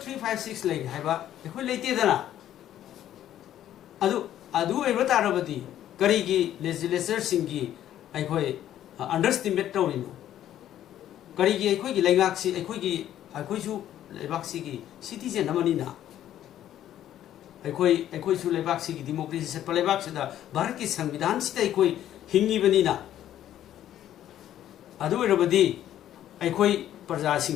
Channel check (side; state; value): right; quieter; 11.7 dB